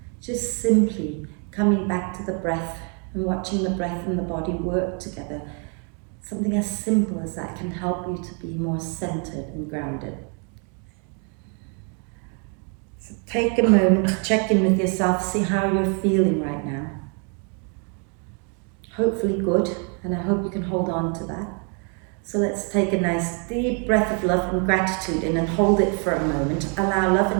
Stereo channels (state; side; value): quieter; left; 39.1 dB